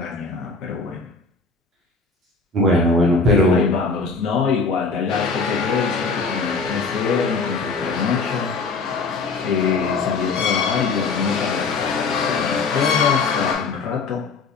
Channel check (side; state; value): right; quieter; 4.1 dB